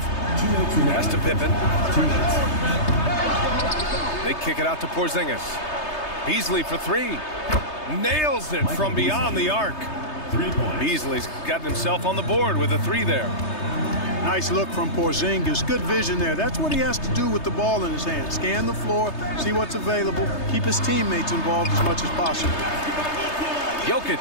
Pass to Pippen. They kick it out to Porzingis. Beasley for 3. Nails it from beyond the arc. 3 points. Beasley's gotten himself on the board with a 3 there. Nice look from Porzingis. Good vision there. That's what he has to do with the ball in his hand. Scan the floor, see what's available, keep his teammates involved as much as possible.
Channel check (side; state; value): right; late; 3.3 ms